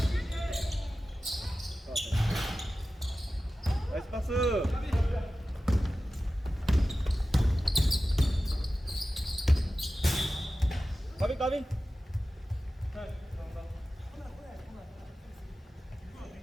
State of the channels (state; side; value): normal; both; correlation 0.95